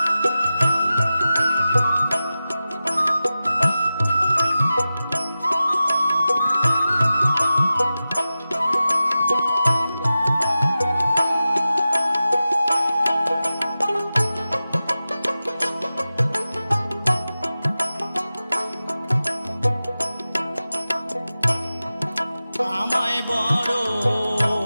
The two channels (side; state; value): both; inverted; correlation -0.94